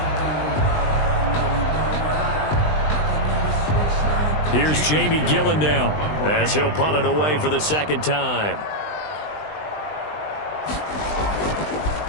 Here's Jamie Gillen now as he'll punt it away for the second time.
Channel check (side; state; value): right; late; 20 ms